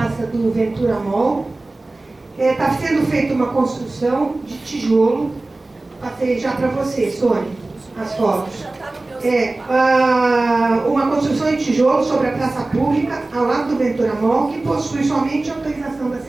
do Ventura Mall. Está sendo feita uma construção de tijolo. Passei já para você, Sônia, as fotos. Uma construção de tijolo sobre a praça pública, ao lado do Ventura Mall, que possui somente autorização da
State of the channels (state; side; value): quieter; left; 3.0 dB